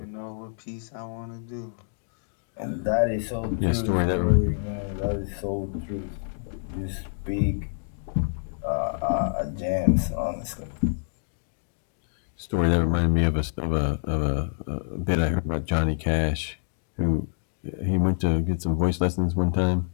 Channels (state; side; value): silent; right; digital silence